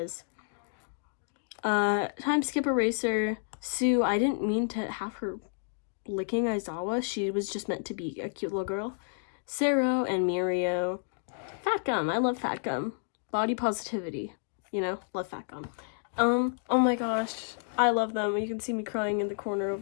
Time skip eraser. Sue, I didn't mean to have her licking Aizawa. She was just meant to be a cute little girl. Sero and Mirio. Fat Gum, I love Fat Gum. Body positivity, you know, love Fat Gum. Oh my gosh, I love them. You can see me crying in the corner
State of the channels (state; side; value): silent; right; digital silence